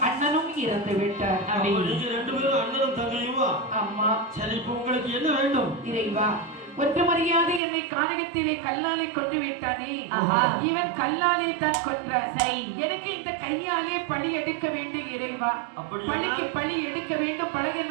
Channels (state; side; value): drops out; left; at 7.6 s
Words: அண்ணனும் இறந்து விட்டார். ரெண்டு பேரும் அண்ணனும் தங்கையுமா? ஆமா. சரி, இப்ப உங்களுக்கு என்ன வேண்டும்? இறைவா, ஒன்று மரியாதை என்னை கானகத்திலே கல்லாலே கொண்டு விட்டானே, இவன் கல்லாலே தான் கொன்றார். சரி, எனக்கு இந்த கையாலே பழி எடுக்க வேண்டும் இறைவா. பழிக்கு பழி எடுக்க வேண்டும். பழக